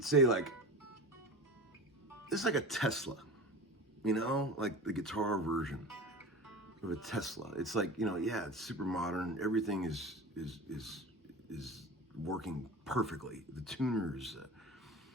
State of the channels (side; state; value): both; normal; correlation 0.32